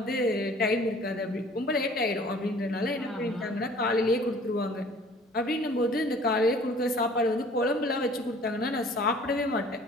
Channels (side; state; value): both; normal; correlation 0.51